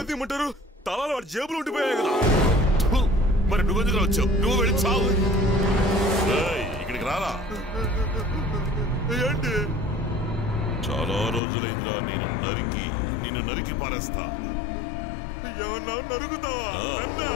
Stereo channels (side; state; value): right; drops out; at 11.4 s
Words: తీయమంటారు, తలాలు వాడి జేబులు ఉండిపోయాయి కదా. మరి నువ్వెందుకు వచ్చావు? నువ్వు వెళ్ళి చావు. ఇక్కడికి రారా. ఏంటి? చాలా రోజులైందిరా నిన్ను నరికి పారేస్తా. ఏమన్నా నరుగుతావా?